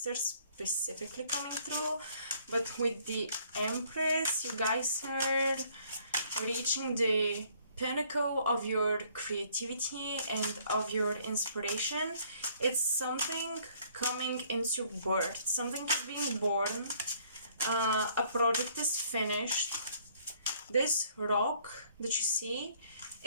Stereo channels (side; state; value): both; inverted; correlation -0.62